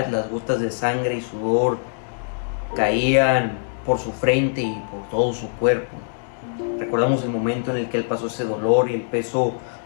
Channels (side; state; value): right; silent; digital silence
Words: las gotas de sangre y sudor caían por su frente y por todo su cuerpo. Recordamos el momento en el que él pasó ese dolor y el peso